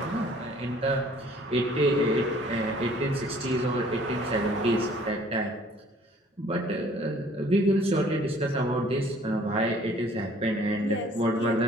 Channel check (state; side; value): normal; both; correlation 0.56